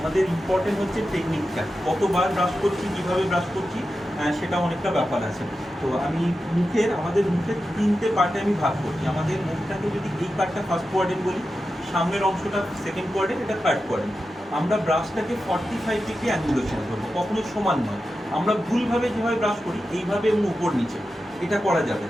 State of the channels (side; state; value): both; normal; correlation 0.91